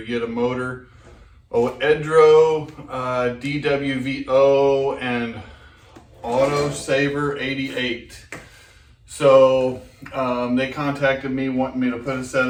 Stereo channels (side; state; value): both; identical; correlation 1.00